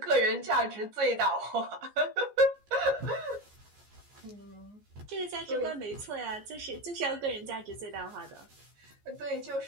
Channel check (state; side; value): late; left; 14 ms